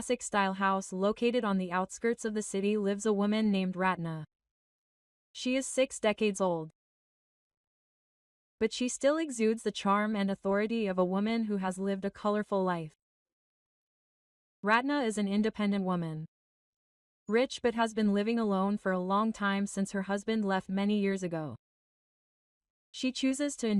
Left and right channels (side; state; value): both; identical; correlation 1.00